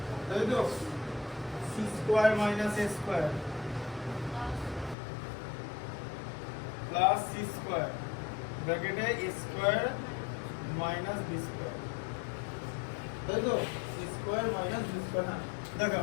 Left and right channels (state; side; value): drops out; right; at 5.0 s